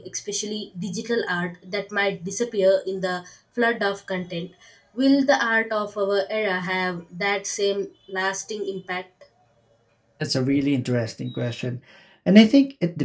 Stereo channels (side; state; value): both; identical; correlation 1.00